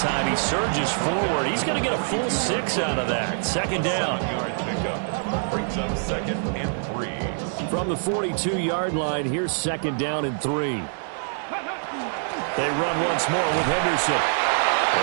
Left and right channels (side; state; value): left; silent; digital silence